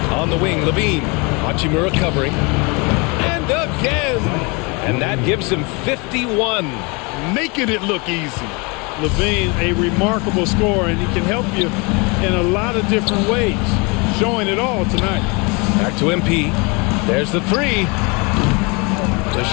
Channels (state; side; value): quieter; right; 29.3 dB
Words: On the wing, Levine. Hachimura covering. And again! And that gives him 51. Making it look easy. Levine, a remarkable scorer, and he can help you in a lot of different ways. Showing it all tonight. Back to MP. There's the three. The